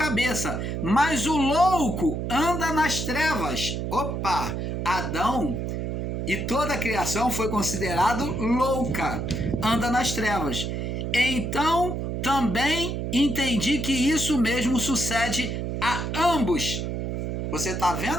mas o louco anda nas trevas. Opa! Adão e toda a criação foi considerado louca, anda nas trevas. Então, também entendi que isso mesmo sucede a ambos. Você está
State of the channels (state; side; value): noise; right; hum, 3 dB below the sound